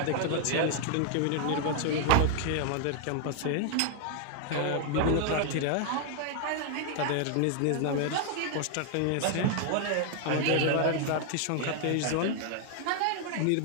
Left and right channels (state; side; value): different; both; correlation 0.00